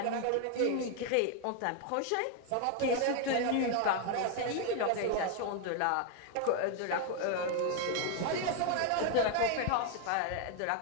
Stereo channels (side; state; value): both; different; correlation 0.00